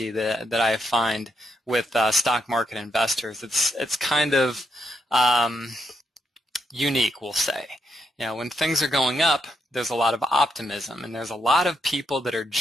that I find with stock market investors, it's kind of unique, we'll say. You know, when things are going up, there's a lot of optimism, and there's a lot of people that are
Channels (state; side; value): normal; both; correlation 0.80